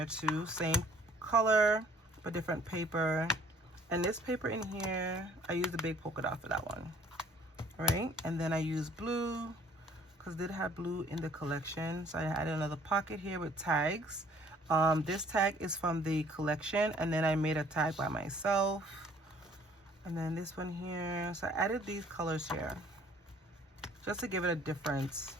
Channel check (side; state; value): both; normal; correlation 0.57